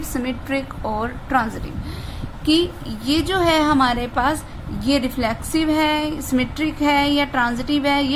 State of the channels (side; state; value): both; identical; correlation 1.00